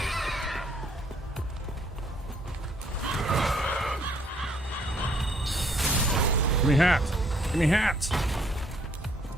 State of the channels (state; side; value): normal; both; correlation 0.66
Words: Give me hat. Give me hat.